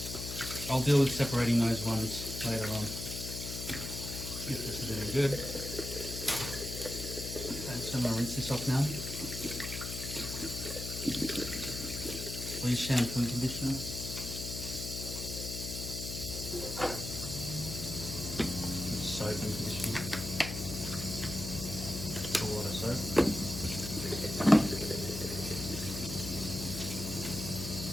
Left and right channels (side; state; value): left; noise; hum, 6 dB below the sound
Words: I'll deal with separating those ones later on if this is any good. Okay, so I'm going to rinse this off now. Please shampoo and conditioner. And soap and conditioner. A lot of soap.